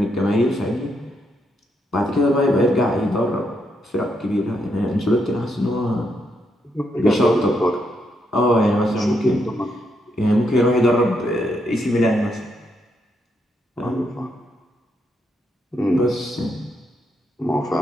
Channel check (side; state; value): both; normal; correlation 0.79